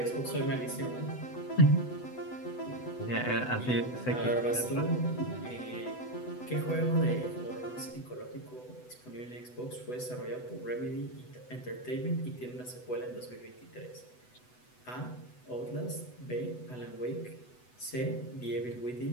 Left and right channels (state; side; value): late; right; 8.0 ms